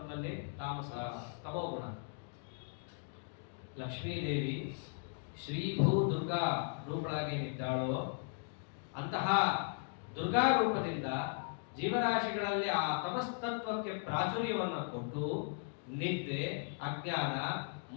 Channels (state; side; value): silent; right; 53 dB below the other